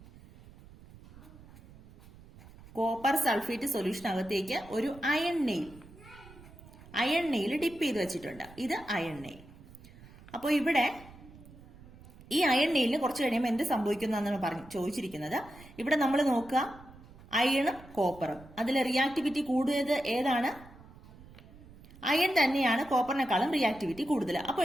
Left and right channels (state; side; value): noise; right; rumble, 21 dB below the sound